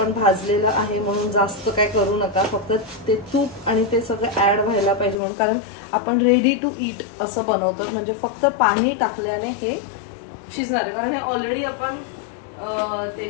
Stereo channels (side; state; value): right; drops out; at 5.2 s